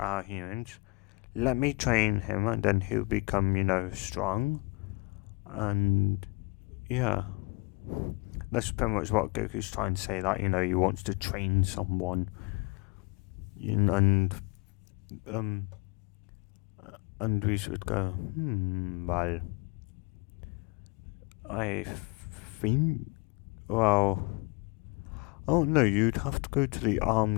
humans. Let me train him, and then he'll become, strong. And, yeah. That's pretty much what Goku's trying to say, that, he wants to train someone. And we should go, well, I think, well, oh no, you'd have to go to the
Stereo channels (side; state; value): right; quieter; 28.5 dB